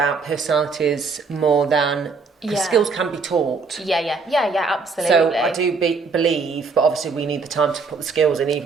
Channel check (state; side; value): quieter; left; 4.6 dB